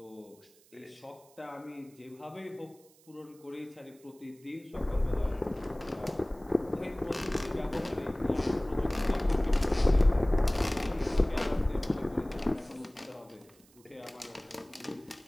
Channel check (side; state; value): right; noise; hiss, 28 dB below the sound